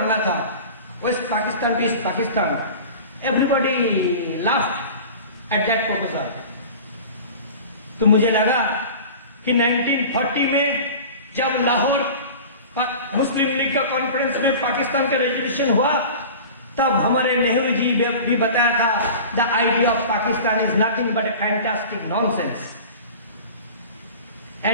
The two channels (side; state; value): both; inverted; correlation -0.37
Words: था, west Pakistan to east Pakistan. Everybody laughed at that proposal. तो मुझे लगा कि 1940 में जब लाहौर मुस्लिम लीग का कॉन्फ्रेंस में पाकिस्तान का रेजोल्यूशन हुआ, तब हमारे नेहरू जी भी बताया था the idea of Pakistan is nothing but A fantastic nonsense,